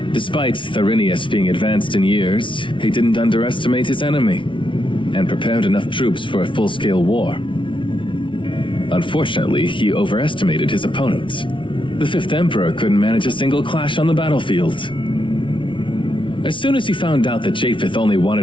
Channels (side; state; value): right; late; 0.25 ms